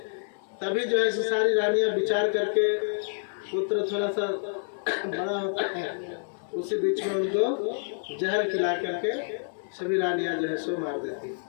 तभी जो है सारी रानियां विचार करके, पुत्र थोड़ा सा बड़ा होता है, उसी बीच में उनको जहर खिला करके सभी रानियां जो है सो मार देती।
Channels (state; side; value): silent; right; digital silence